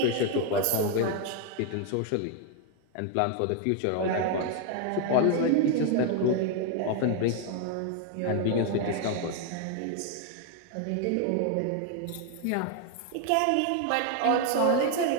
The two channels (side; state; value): both; different; correlation 0.01